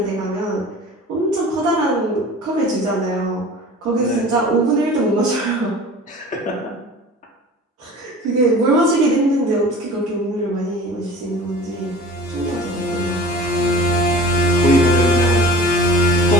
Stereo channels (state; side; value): normal; both; correlation 0.41